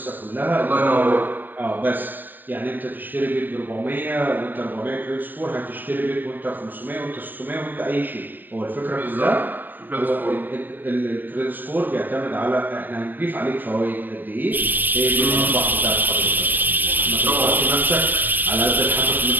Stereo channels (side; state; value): left; late; 0.091 ms